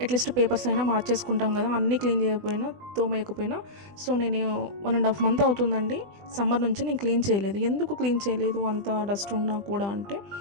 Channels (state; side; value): late; left; 20 ms